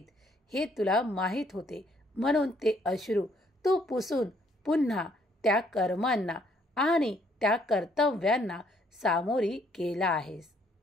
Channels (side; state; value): both; normal; correlation 0.67